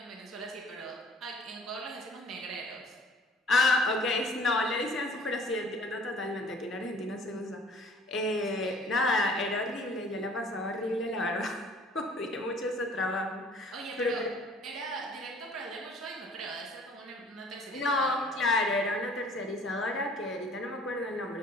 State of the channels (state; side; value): normal; both; correlation 0.53